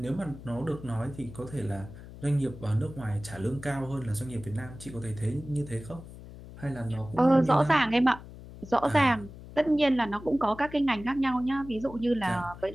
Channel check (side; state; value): left; noise; hum, 15 dB below the sound